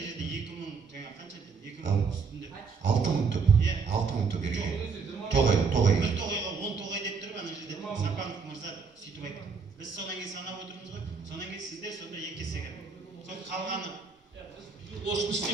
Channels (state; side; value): quieter; left; 5.1 dB